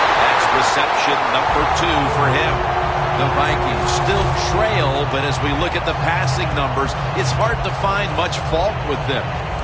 That's reception number 2 for him. The Vikings still trail, but as we look at the passing numbers, it's hard to find much fault with them.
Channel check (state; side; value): identical; both; correlation 1.00